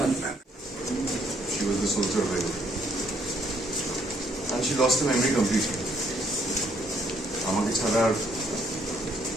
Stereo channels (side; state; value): both; normal; correlation 0.67